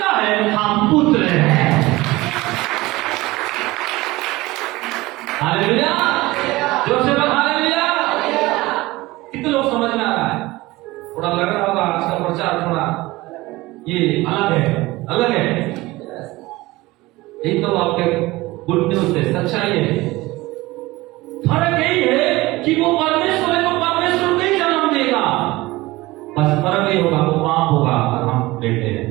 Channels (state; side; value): quieter; left; 19.9 dB